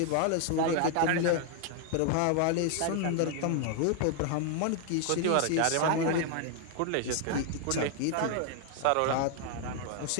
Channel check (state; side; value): different; both; correlation 0.00